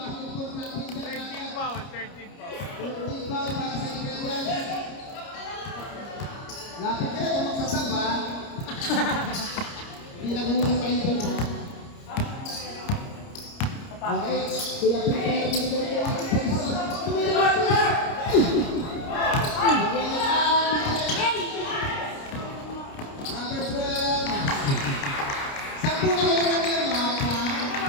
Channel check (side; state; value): right; late; 29 ms